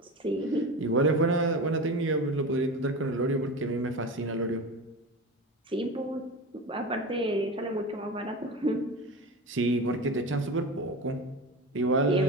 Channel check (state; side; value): normal; both; correlation 0.27